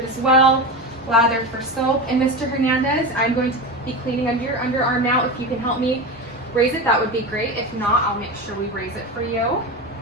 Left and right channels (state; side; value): normal; both; correlation 0.23